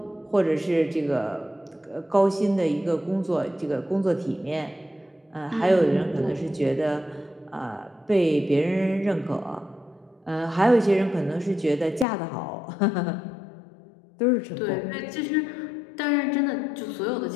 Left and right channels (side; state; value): right; drops out; at 12.1 s